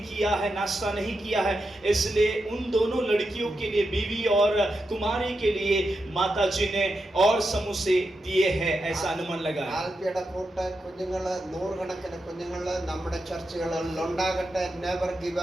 किया है, नाश्ता नहीं किया है, इसलिए उन दोनों लड़कियों के लिए, बीवी और कुमारी के लिए माता जी ने और समोसे दिए हैं, ऐसा अनुमान लगा. ആൽഫിയുടെ കൂട്ട് കുഞ്ഞുങ്ങള്, 100 കണക്കിന് കുഞ്ഞുങ്ങള് നമ്മുടെ ചർച്ചുകളിൽ ഉണ്ടാകട്ടെ. Never give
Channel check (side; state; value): both; normal; correlation 0.87